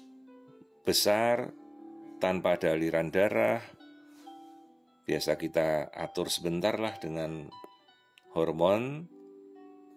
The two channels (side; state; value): both; identical; correlation 1.00